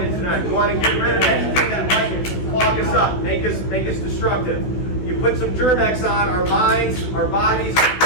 in tonight. We want to get rid of anything that might clog us up, make us destructive. You put some Germ-X on, our minds, our bodies are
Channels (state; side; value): late; right; 16 ms